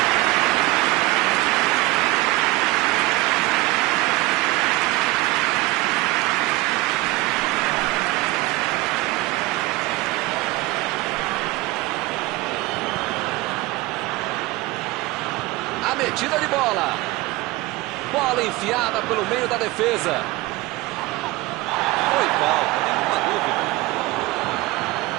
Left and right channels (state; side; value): quieter; left; 20.1 dB